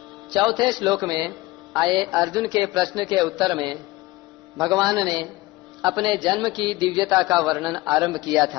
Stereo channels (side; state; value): right; quieter; 19.7 dB